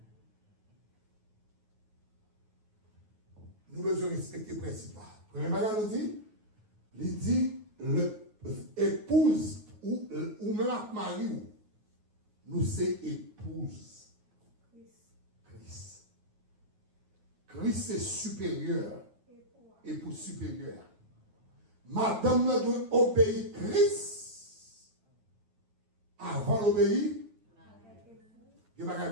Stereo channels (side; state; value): left; late; 9.4 ms